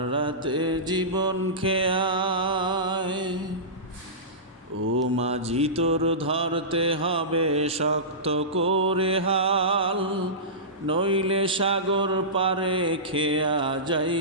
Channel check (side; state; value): both; normal; correlation -0.19